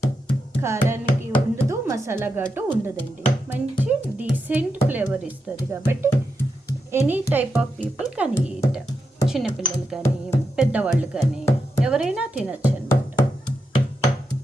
కారానికి ఉండదు, మసాలా ఘాటు ఉండదండి, మంచి డీసెంట్ ఫ్లేవర్ ఇస్తుంది. కాబట్టి ఎనీ టైప్ ఆఫ్ పీపుల్ కానీ ఈట్, చిన్నపిల్లలు కానీ పెద్దవాళ్ళు కానీ ఎవరైనా తినచ్చు అనమాట.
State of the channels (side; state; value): both; normal; correlation 0.86